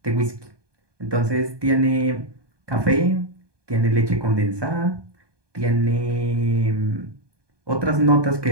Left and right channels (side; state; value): left; late; 1.2 ms